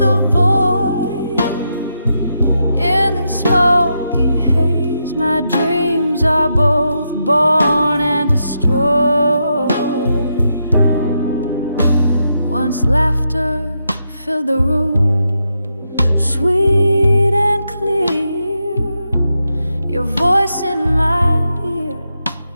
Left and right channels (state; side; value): inverted; both; correlation -0.83